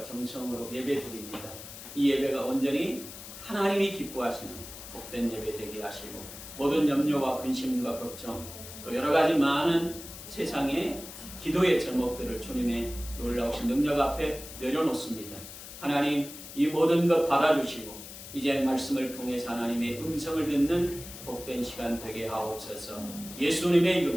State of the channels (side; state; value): left; noise; hiss, 13 dB below the sound